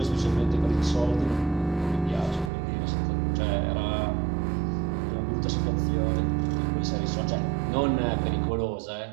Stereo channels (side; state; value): left; drops out; at 2.5 s